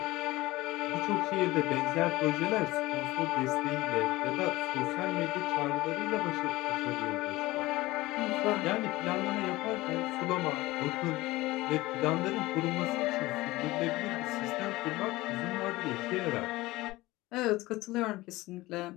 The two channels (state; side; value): quieter; right; 19.2 dB